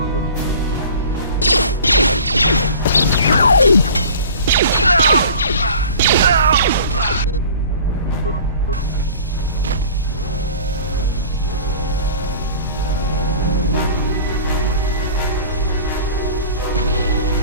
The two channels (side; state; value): both; inverted; correlation -0.43